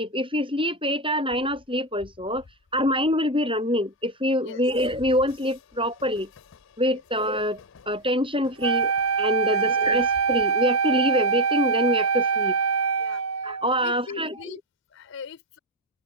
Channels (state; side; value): normal; both; correlation 0.07